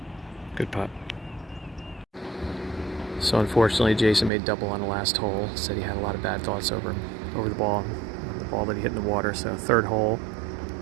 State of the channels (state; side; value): drops out; left; at 4.3 s